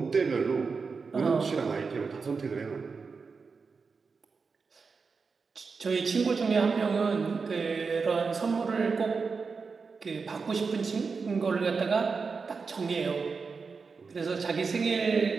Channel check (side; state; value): left; quieter; 4.9 dB